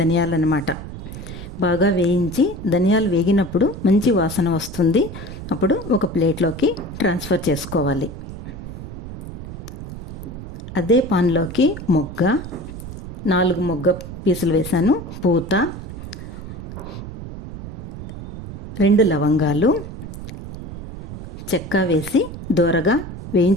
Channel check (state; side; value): noise; right; rumble, 10 dB below the sound